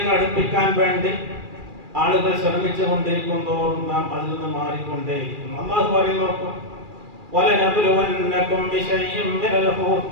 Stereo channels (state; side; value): late; left; 2.4 ms